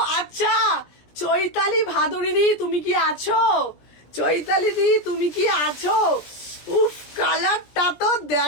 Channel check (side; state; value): right; late; 17 ms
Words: আচ্ছা, চৈতালি ভাদুরী দি তুমি কি আছো? চৈতালি দি তুমি কি আছো? উফ, কালারটা তো